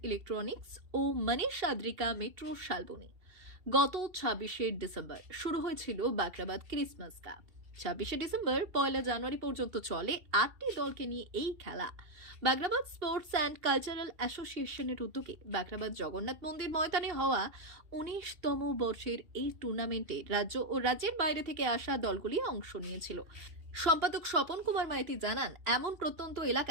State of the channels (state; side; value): late; left; 2.7 ms